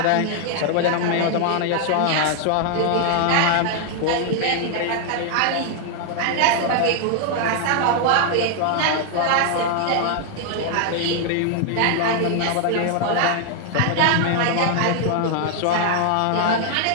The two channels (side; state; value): both; different; correlation 0.00